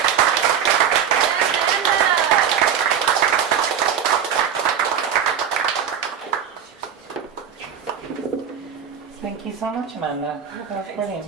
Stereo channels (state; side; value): quieter; left; 8.3 dB